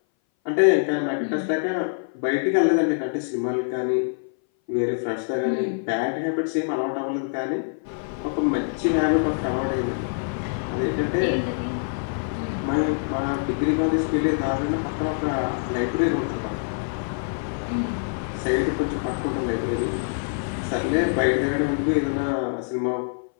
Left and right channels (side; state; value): right; silent; 59 dB below the other